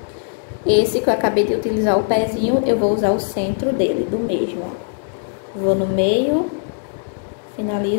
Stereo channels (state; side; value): silent; right; 61 dB below the other